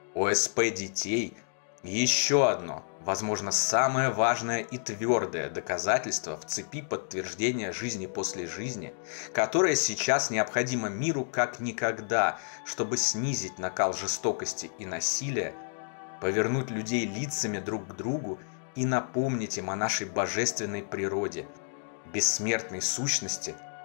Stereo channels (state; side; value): silent; right; digital silence